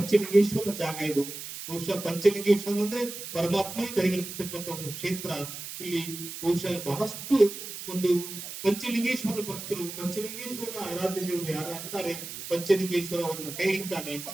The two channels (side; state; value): right; noise; hiss, 9 dB below the sound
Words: ಜಾಗ ಇದು. ಬಹುಶಃ ಪಂಚಲಿಂಗೇಶ್ವರ ಅಂದ್ರೆ ಪರಮಾತ್ಮ ದಯಗಳಿರ್ತಕ್ಕಂಥ ಒಂದು ಕ್ಷೇತ್ರ. ಇಲ್ಲಿ ಬಹುಶಃ ಬಹಳಷ್ಟು ಒಂದು ಪಂಚಲಿಂಗೇಶ್ವರ ಭಕ್ತರು, ಪಂಚಲಿಂಗೇಶ್ವರ ಆರಾಧ್ಯ ದೇವರು ಯಾರು ಅಂತಾರೆ, ಪಂಚಲಿಂಗೇಶ್ವರ ಅವರನ್ನ ಕೈ ಹಿಡ್ತಾನೆ